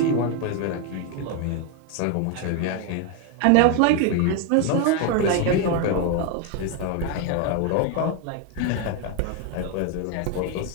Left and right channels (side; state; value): both; different; correlation 0.01